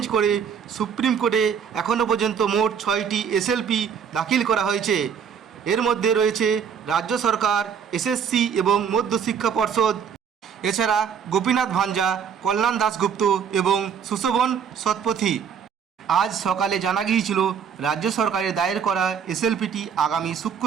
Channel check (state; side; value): quieter; left; 7.3 dB